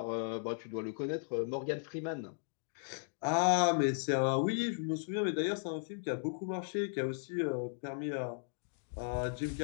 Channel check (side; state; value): right; silent; digital silence